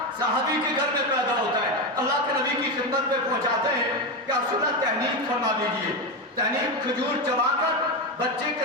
صحابی کے گھر میں پیدا ہوتا ہے, اللہ کے نبی کی خدمت پہ پہنچاتے ہیں کہ آپ سنت تحنیک فرما دیجئے. تحنیک کھجور چبا کر بچے کے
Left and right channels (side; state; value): both; normal; correlation 0.13